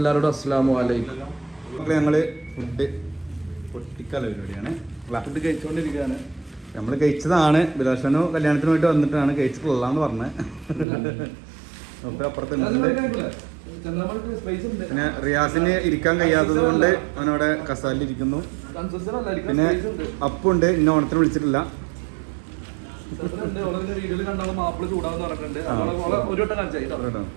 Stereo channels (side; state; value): left; drops out; at 10.9 s